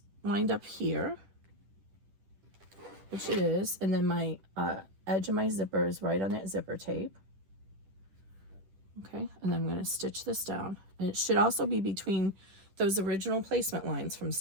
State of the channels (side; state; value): left; late; 10 ms